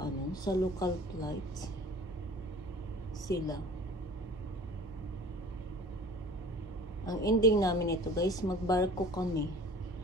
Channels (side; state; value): both; normal; correlation 0.45